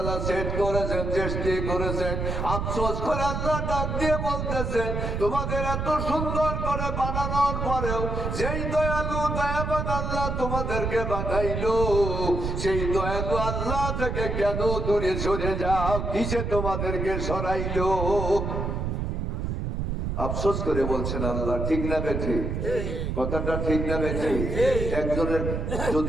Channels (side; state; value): right; noise; rumble, 2 dB below the sound